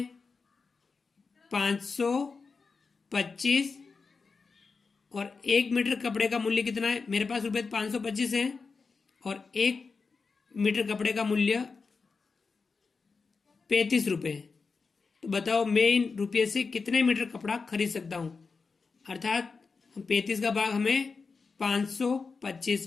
525, और 1 मीटर कपड़े का मूल्य कितना है? मेरे पास रुपये 525 है और 1 मीटर कपड़े का मूल्य 35 रुपए है। तो बताओ मैं इन रुपये से कितने मीटर कपड़ा खरीद सकता हूं। अर्थात 35 का भाग हमें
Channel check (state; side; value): quieter; right; 4.7 dB